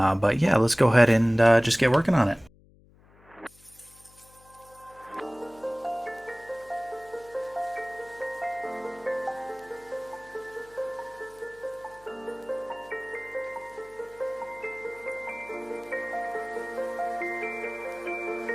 yeah, let's go ahead and just get working on it.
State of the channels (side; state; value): left; noise; hum, 27 dB below the sound